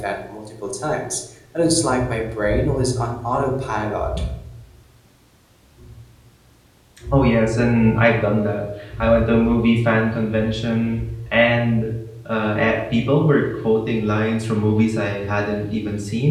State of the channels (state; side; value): identical; both; correlation 1.00